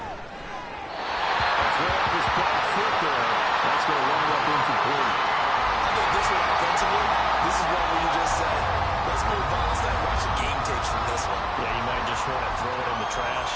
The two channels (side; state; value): both; identical; correlation 1.00